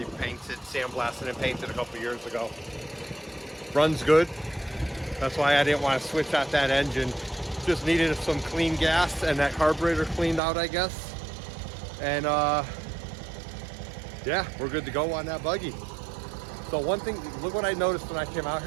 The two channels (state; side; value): drops out; left; at 10.4 s